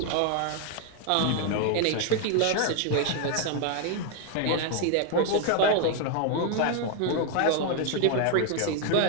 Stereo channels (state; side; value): different; both; correlation 0.01